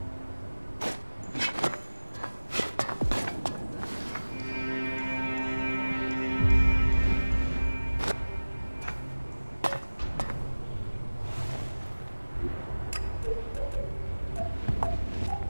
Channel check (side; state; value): both; inverted; correlation -1.00